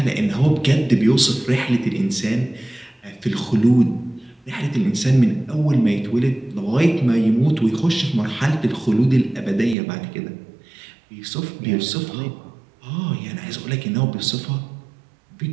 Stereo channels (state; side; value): drops out; left; at 9.8 s